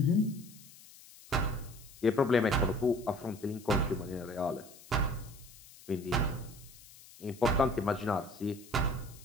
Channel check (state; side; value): noise; left; hiss, 21 dB below the sound